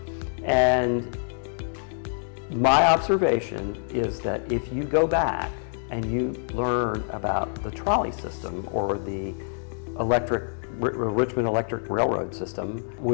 And my observation is that if you go back and you learn about the trolley system or the Richmond Electric Railroad system,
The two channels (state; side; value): silent; right; digital silence